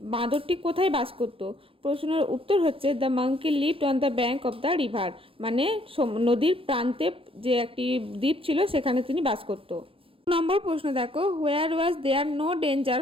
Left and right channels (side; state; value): left; late; 0.27 ms